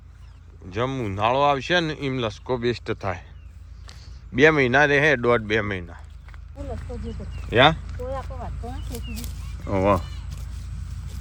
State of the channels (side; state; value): both; identical; correlation 1.00